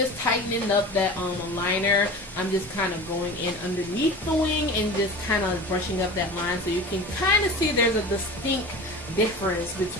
tightening up that liner. I'm just kind of going in underneath the wing and just kind of brushing up that line so you can kind of see there's a distinct difference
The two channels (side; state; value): both; normal; correlation 0.35